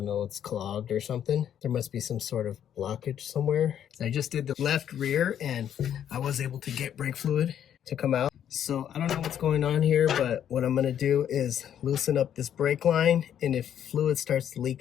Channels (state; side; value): quieter; right; 9.7 dB